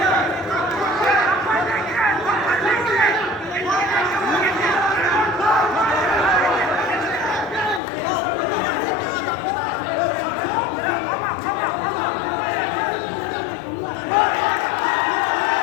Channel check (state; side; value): drops out; right; at 7.8 s